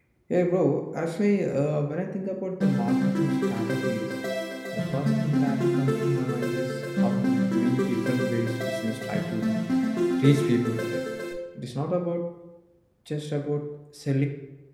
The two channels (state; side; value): identical; both; correlation 1.00